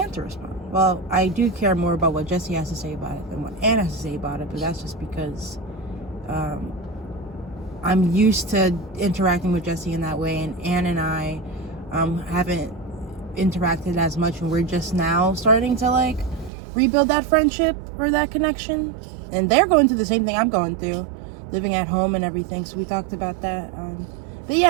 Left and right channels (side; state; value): left; drops out; at 16.5 s